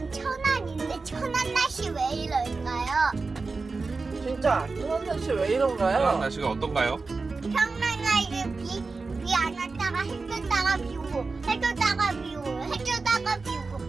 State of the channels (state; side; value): quieter; left; 4.0 dB